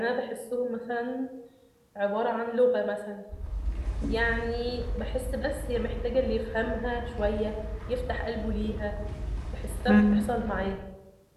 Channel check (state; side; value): identical; both; correlation 1.00